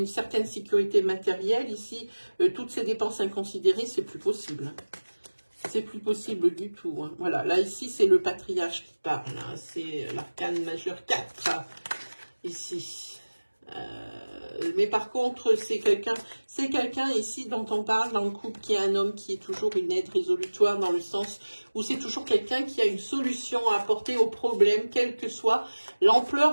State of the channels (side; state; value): both; inverted; correlation -1.00